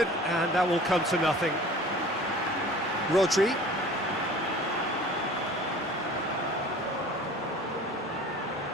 and that will come to nothing. Rodri.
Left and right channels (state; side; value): normal; both; correlation 0.44